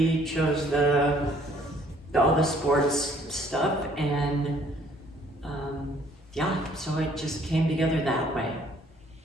chose all the sports stuff, and yeah, so it just came together that way.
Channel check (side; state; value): both; normal; correlation 0.61